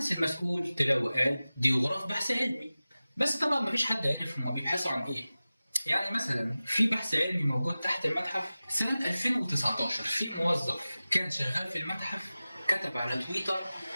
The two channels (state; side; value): inverted; both; correlation -0.96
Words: المسؤول طلع وقال دي غرف بحث علمي، بس طبعا مفيش حد عارف هما بيبحثوا عن إيه. يعني مثلا في بحث علمي موجود تحت المتحف سنة 2019 في موظف كان شغال في المتحف كتب على تويتر